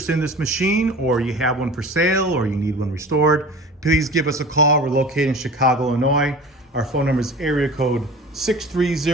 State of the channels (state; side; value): normal; both; correlation 0.38